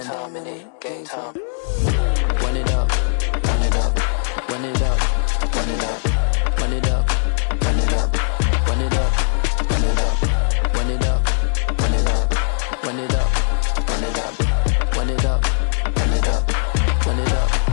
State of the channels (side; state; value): right; silent; 66 dB below the other